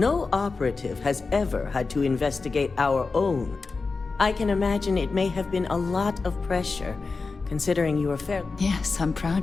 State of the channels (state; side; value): quieter; right; 4.2 dB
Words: operative has ever had to investigate our own. I can imagine it may have been a lot of pressure, considering you were fair. Yes, I'm